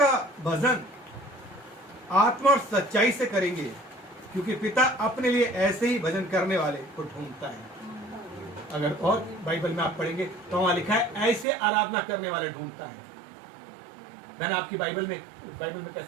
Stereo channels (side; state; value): left; drops out; at 11.5 s